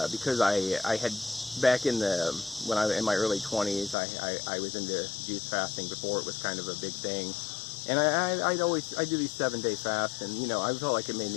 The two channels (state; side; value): drops out; right; at 4.0 s